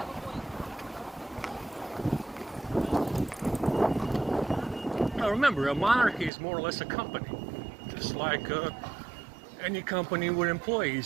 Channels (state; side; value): drops out; left; at 6.3 s